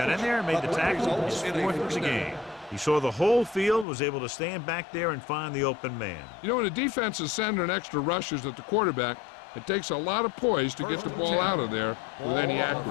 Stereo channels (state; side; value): drops out; right; at 3.9 s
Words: in there, made the tackle. His 4th of the game. He saw the whole field, was able to stand back there and find the open man. You know, when a defense is sending extra rushers at the quarterback, it takes a lot of poise to get the ball out of there with any